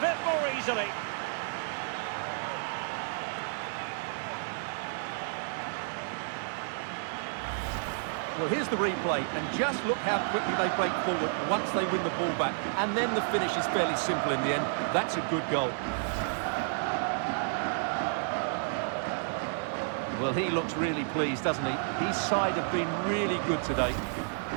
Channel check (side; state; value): left; silent; digital silence